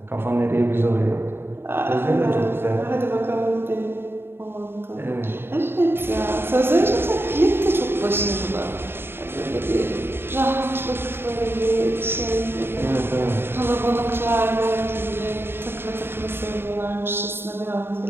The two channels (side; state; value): left; late; 0.11 ms